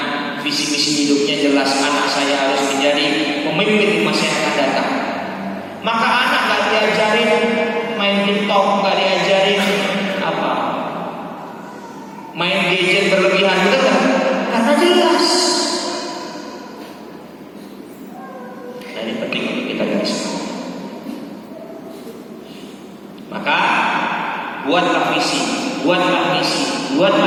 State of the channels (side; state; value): both; identical; correlation 1.00